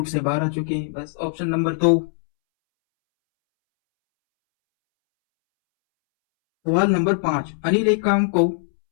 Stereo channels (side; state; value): right; silent; 65 dB below the other